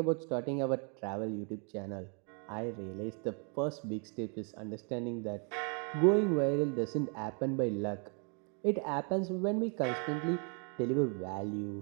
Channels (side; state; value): left; quieter; 38.0 dB